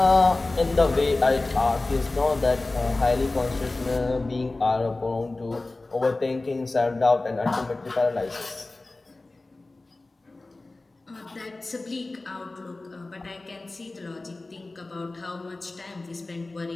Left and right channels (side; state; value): right; quieter; 3.1 dB